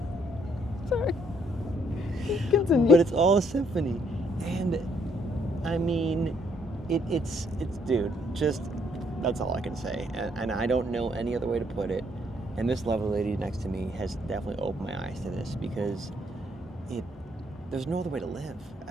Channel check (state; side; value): normal; both; correlation 0.69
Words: Sorry. Continue. But it's all a symphony. And I mean, it's dude, just, that's all I can say. And I don't know any other way to put it. And this lovely lady next to me has definitely opened my eyes to this, because there's no other way to live.